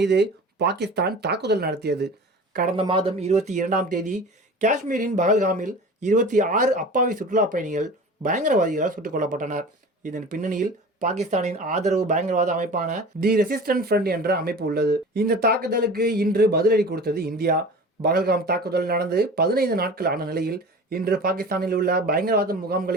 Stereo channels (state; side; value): normal; both; correlation 0.38